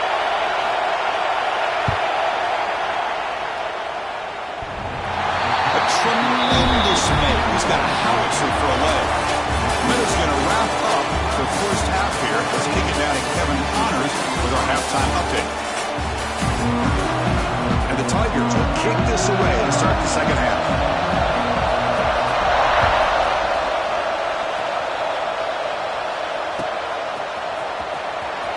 A tremendous make. He's got a howitzer for a leg. Minutes going to wrap up the first half here. Let's kick it down to Kevin Connors with our halftime update. And the Tigers will kick this away to start the second half.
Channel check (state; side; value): identical; both; correlation 1.00